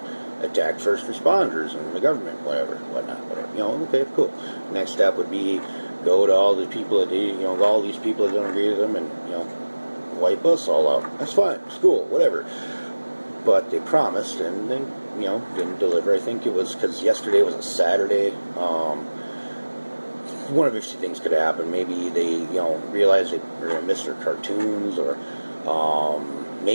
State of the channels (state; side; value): inverted; both; correlation -1.00